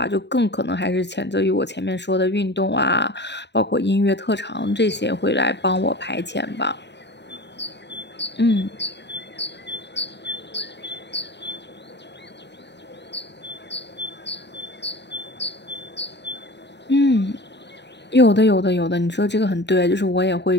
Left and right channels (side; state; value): right; late; 0.50 ms